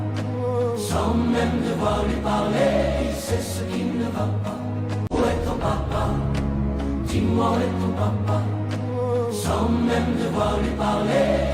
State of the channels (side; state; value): both; identical; correlation 1.00